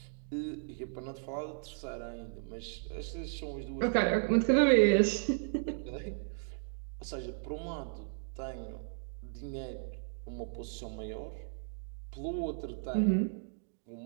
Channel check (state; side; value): silent; left; digital silence